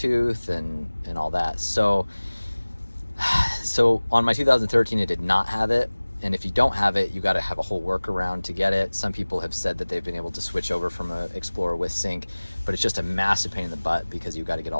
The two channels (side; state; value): both; inverted; correlation -1.00